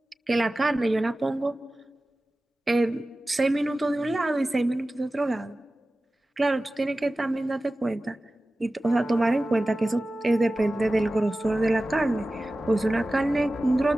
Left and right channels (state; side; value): normal; both; correlation 0.96